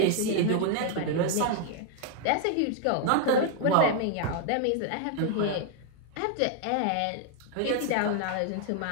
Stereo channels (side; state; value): both; different; correlation 0.00